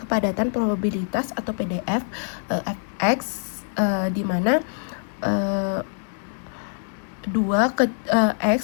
probabilitas atau PDF fx, di mana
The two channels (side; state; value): right; silent; digital silence